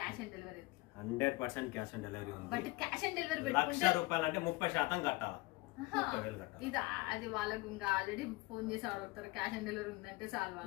Cash on delivery 100% cash on delivery ఉంది. బట్ క్యాష్ ఆన్ డెలివరీ ₹1,00,000 అంటే 30% కట్టాలి. ఇది అది వాళ్ళకు ఇంకా ఆల్రెడీ ఫోన్ చేసి అడుగుతారు. క్యాష్ ఆన్ డెలివరీ ఉందంటే చాలు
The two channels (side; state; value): right; quieter; 22.1 dB